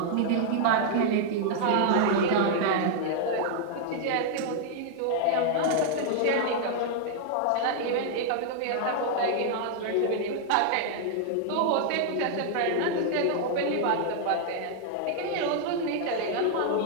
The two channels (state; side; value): different; both; correlation -0.01